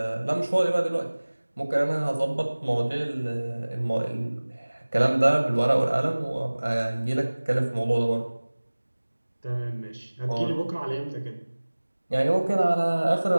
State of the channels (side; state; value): both; inverted; correlation -1.00